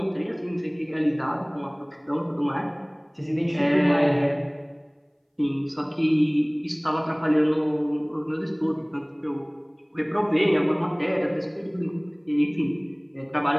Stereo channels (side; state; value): both; identical; correlation 1.00